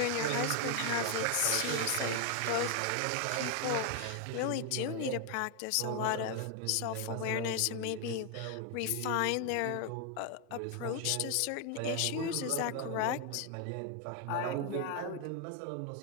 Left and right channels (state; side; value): different; both; correlation 0.01